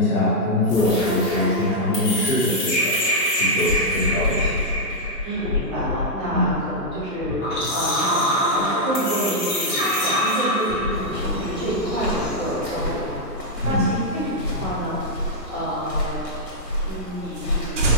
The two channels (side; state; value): both; normal; correlation -0.05